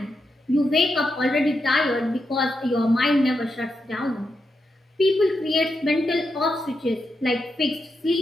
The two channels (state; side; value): normal; both; correlation 0.85